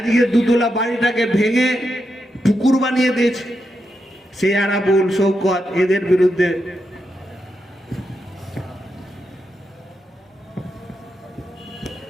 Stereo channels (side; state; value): both; normal; correlation 0.85